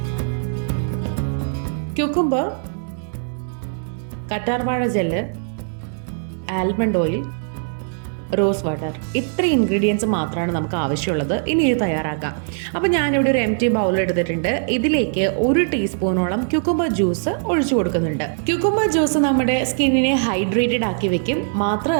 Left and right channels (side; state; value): left; silent; 63 dB below the other